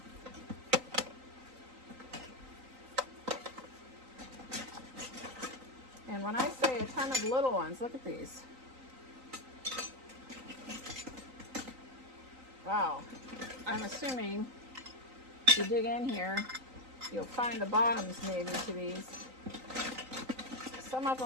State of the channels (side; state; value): left; late; 3.9 ms